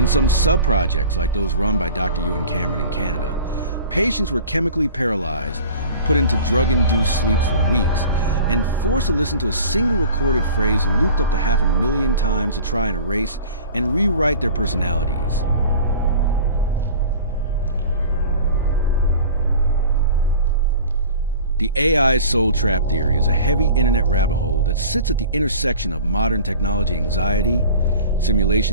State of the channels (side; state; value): both; inverted; correlation -0.42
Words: some sub-projects like those run by Dr. Ewan Cameron in Canada, patients were chemically paralyzed, put into drug-induced sleeps for weeks, and forced to listen to a single recorded phrase looped up to 500,000 times to try and erase and rewrite their personalities. The AI soul trap theory is a heavy internet rabbit hole that sits at the intersection of modern technology anxiety,